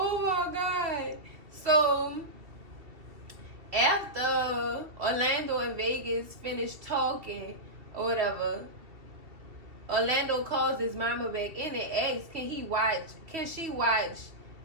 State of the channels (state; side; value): late; left; 2.7 ms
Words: my God. So after Orlando and Vegas finished talking or whatever, Orlando calls his mama back in and asks, can she watch